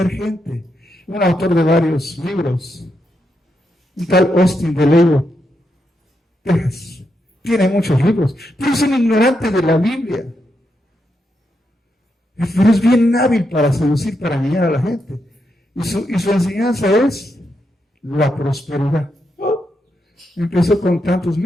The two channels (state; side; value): normal; both; correlation 0.83